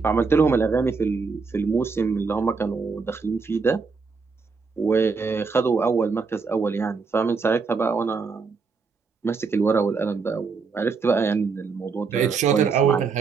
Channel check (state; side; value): quieter; left; 4.9 dB